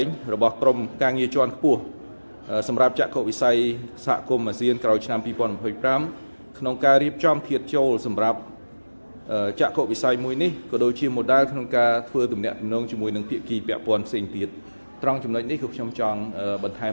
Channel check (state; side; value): inverted; both; correlation -1.00